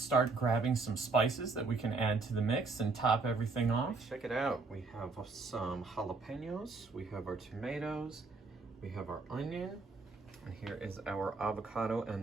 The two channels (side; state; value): left; quieter; 4.0 dB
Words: grabbing some spices that we can add to the mix and top everything off. Check it out. We have some jalapenos, we have our tomatoes, we have our onion, and here is our avocado